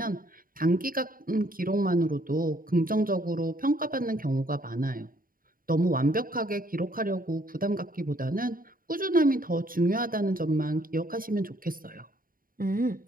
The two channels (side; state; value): left; late; 0.41 ms